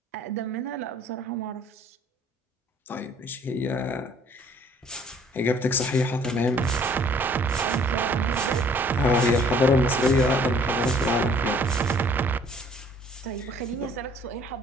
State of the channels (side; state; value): both; normal; correlation 0.57